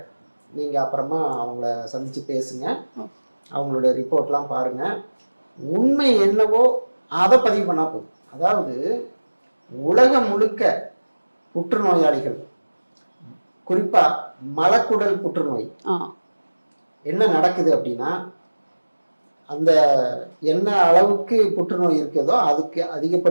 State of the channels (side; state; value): both; inverted; correlation -1.00